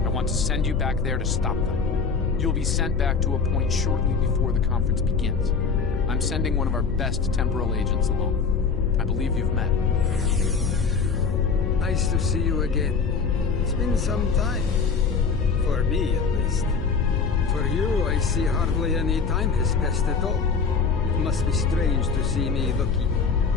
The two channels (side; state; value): right; quieter; 5.3 dB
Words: I want to send you back there to stop them. You'll be sent back to a point shortly before the conference begins. I'm sending one of our best temporal agents along. I believe you've met. Nice to see you again. It's been some time. For me, at least. For you, I see hardly any time has passed at all. It must be strange to see me looking